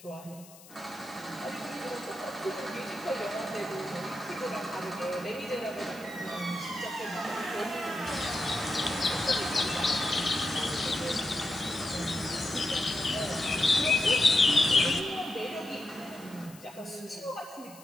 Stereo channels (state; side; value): noise; left; hiss, 21 dB below the sound